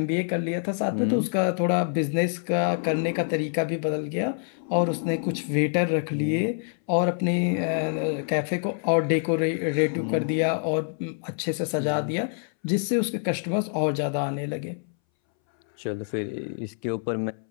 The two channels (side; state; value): right; silent; 61 dB below the other